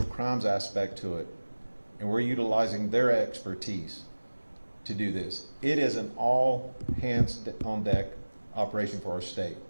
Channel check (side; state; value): both; inverted; correlation -1.00